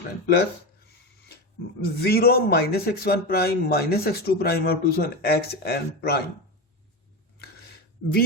prime plus zero minus x1 prime minus x2 prime up to so on xn prime, v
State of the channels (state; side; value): normal; both; correlation 0.19